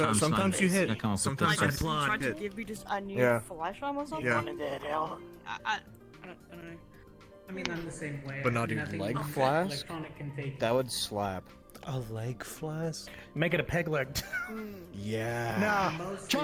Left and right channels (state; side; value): identical; both; correlation 1.00